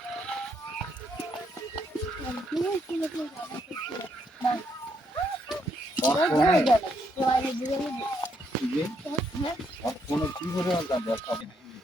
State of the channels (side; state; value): both; normal; correlation 0.75